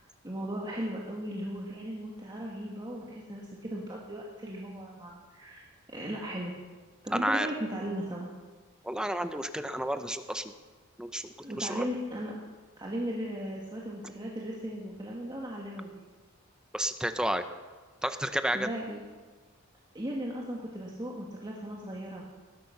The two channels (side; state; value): both; normal; correlation 0.77